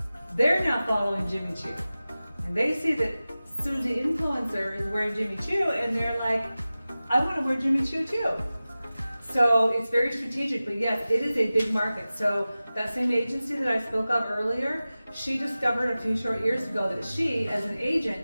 they're now following Jimmy Choo. And they see that Susie Influencer is wearing Jimmy Choo, and they're like, I want to wear Jimmy Choo too. So it's very strategic, but yes, it is a big market. So that same agency that I spoke of earlier, she discovered a few short years ago that she, as an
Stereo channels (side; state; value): both; inverted; correlation -0.96